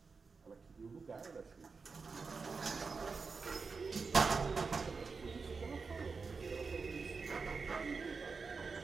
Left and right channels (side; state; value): left; quieter; 4.7 dB